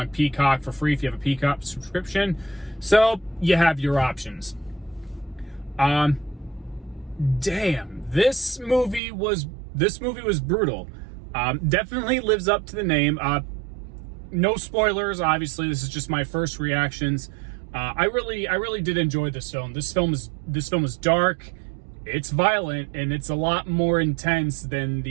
Peacock for free if you have a Peacock subscription. So you have your options. Damn, this movie was brutal. Definitely lives up to the name. No spoilers, obviously. This is just my first reactions. I really did enjoy this film. This film is dark. It's violent, and it's a lot more intense than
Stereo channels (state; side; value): drops out; left; at 9.0 s